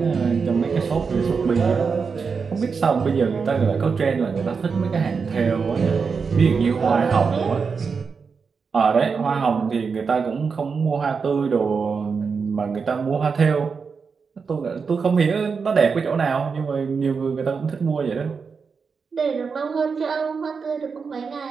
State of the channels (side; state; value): left; quieter; 5.4 dB